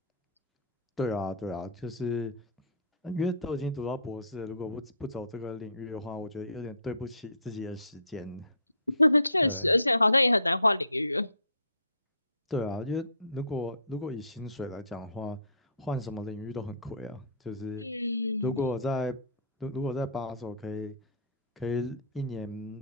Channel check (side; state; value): both; inverted; correlation -0.49